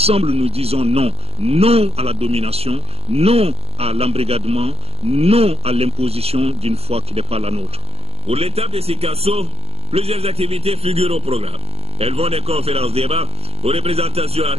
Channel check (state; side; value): late; left; 0.29 ms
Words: nous disons non. Non à la domination, non à l'embrigadement, non à l'imposition d'une foi qui n'est pas la nôtre. Pour l'étape de Sikasso, plusieurs activités figurent au programme. Elles vont des conférences débats aux représentations